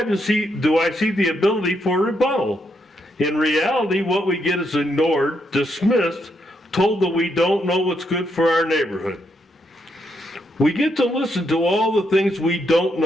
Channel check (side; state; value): both; normal; correlation 0.78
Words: do I see the ability for rebuttal. In reality, what we get is ignored, dismissed, told that we don't know what's good for our neighborhood. We get to listen to all the things we don't